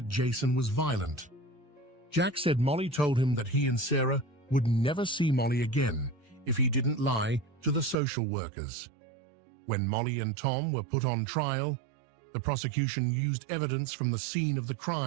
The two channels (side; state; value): left; drops out; at 8.0 s